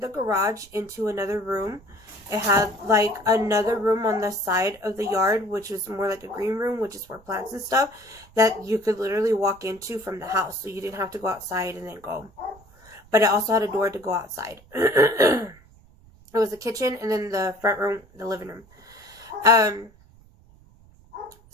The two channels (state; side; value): noise; right; rumble, 26 dB below the sound